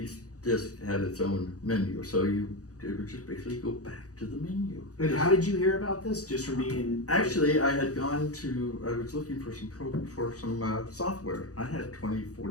each disk had its own menu, so it would just basically go back to the menu. And how did you hear about this? Just from being... Actually, I was looking for some software. I had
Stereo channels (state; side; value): late; right; 0.67 ms